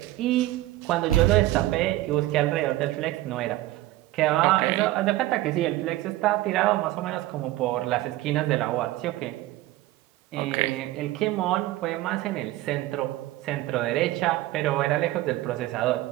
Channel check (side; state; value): left; quieter; 16.7 dB